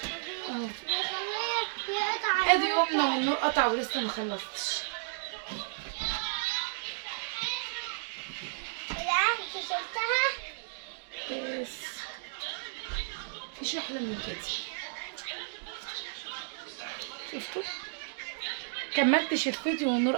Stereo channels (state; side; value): silent; left; digital silence